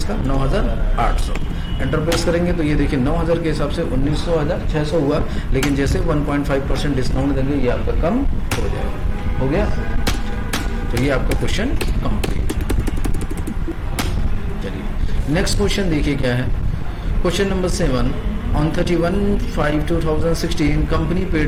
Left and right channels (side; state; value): both; identical; correlation 1.00